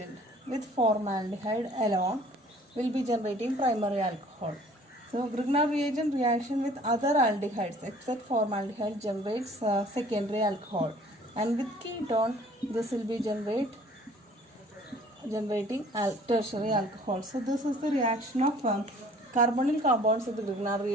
with formaldehyde alone will be generating primary alcohol. So Grignard reagent reaction with other aldehydes except formaldehyde generates secondary alcohol, and with ketone this will be generating tertiary alcohol. So this is the reaction of carbonyl compounds with the Grignard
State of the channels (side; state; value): both; normal; correlation 0.53